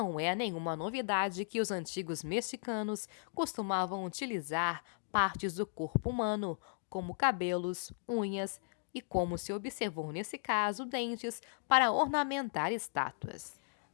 é nenhuma novidade que os antigos mexicanos costumavam utilizar partes do corpo humano, como cabelos, unhas e, como se observou nesse caso, dentes, para ornamentar estátuas.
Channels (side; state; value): right; silent; digital silence